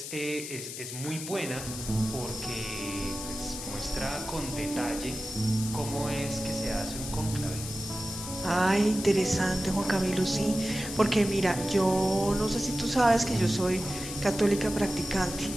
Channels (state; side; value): noise; left; hiss, 8 dB below the sound